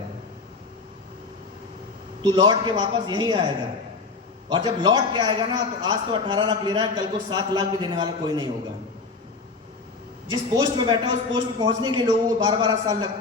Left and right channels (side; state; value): right; quieter; 4.1 dB